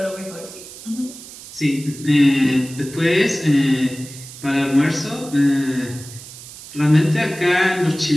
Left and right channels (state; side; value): noise; right; hiss, 16 dB below the sound